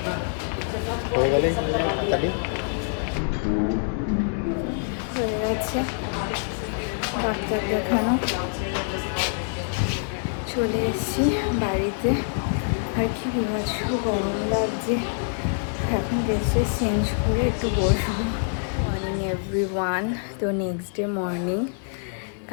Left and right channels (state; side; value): silent; right; digital silence